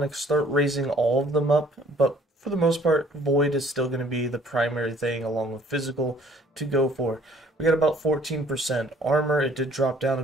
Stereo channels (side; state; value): both; normal; correlation 0.57